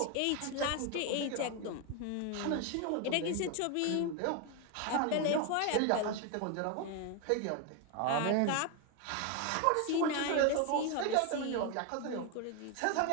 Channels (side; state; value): both; different; correlation 0.01